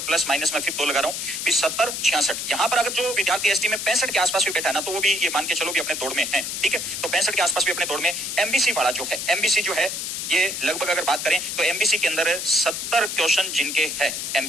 प्लस माइनस में फिर 2 लगा रहा हूं, 70 66 यहां पर अगर जो विद्यार्थी एसटी में 65 के आसपास भी बैठा है ना, तो वो भी ये मान के चलो भी अपने दौड़ में है, ठीक है। तो 65 के आसपास भी अपने दौड़ में। एमबीसी वाला जो है, एमबीसी जो है ये लगभग अगर बात करें तो एमबीसी के अंदर 70 क्वेश्चन जिनके है,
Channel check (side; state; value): left; noise; hiss, 4 dB below the sound